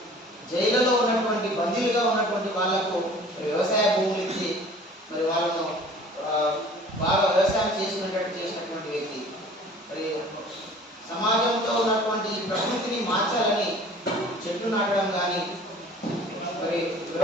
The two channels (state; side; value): normal; both; correlation 0.47